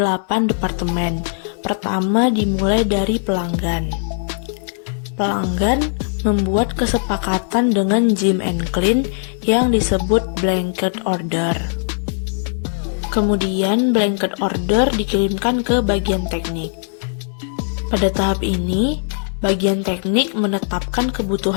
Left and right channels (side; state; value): right; silent; 66 dB below the other